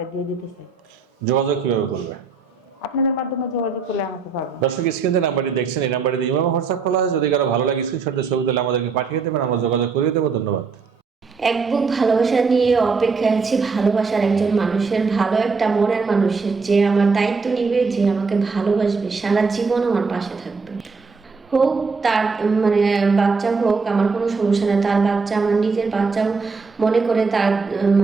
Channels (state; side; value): quieter; left; 4.7 dB